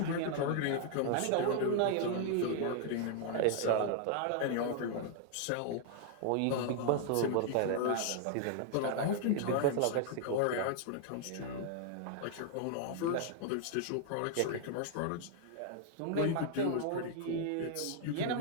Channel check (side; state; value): both; different; correlation 0.00